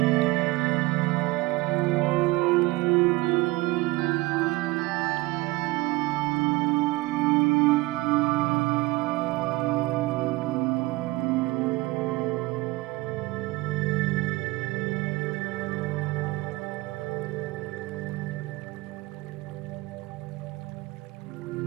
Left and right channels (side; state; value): left; quieter; 21.4 dB